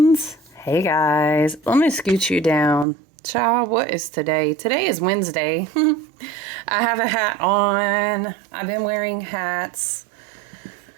Hey guys, let me scoot you down. Child, what is today? Today is Wednesday. I have a hat on. I've been wearing hats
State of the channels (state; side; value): drops out; left; at 2.9 s